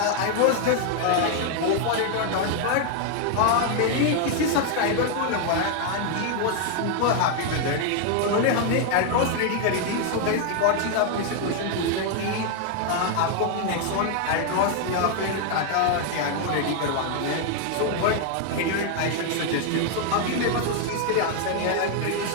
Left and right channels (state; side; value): different; both; correlation 0.00